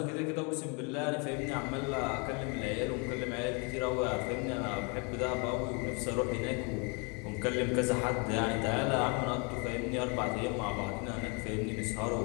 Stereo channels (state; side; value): quieter; right; 33.7 dB